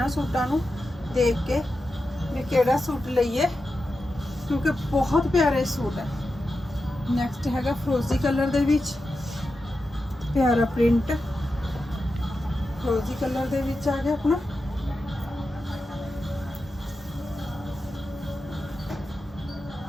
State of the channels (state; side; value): normal; both; correlation 0.90